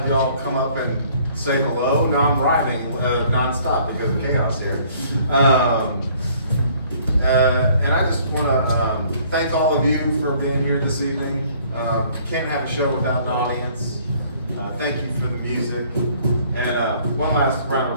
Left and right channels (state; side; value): inverted; both; correlation -0.59